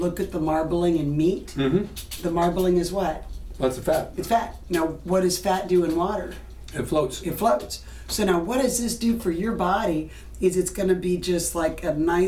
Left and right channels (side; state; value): both; identical; correlation 1.00